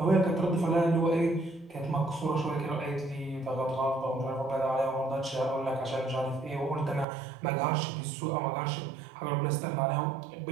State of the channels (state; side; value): drops out; left; at 7.1 s